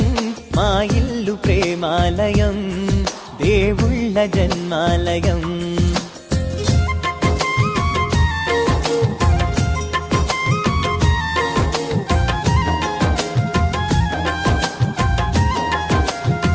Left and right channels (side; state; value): both; identical; correlation 1.00